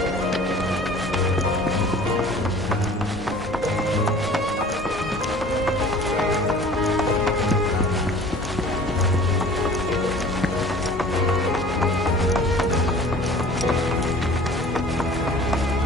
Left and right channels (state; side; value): normal; both; correlation 0.46